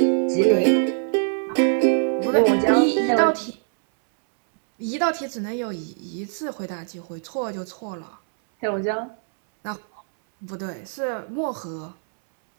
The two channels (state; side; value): silent; left; 63 dB below the other